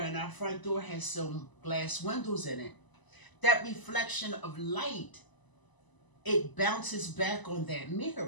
our front door has some glass windows in it, that reflection of light, it bounces back on that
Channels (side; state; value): right; late; 1.0 ms